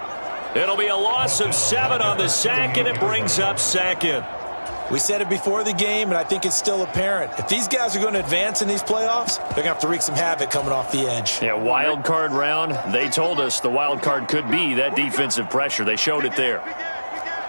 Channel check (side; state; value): both; inverted; correlation -1.00